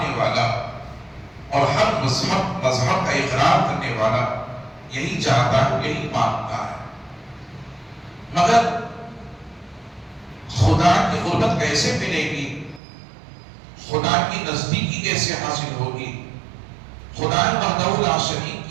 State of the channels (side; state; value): left; drops out; at 12.8 s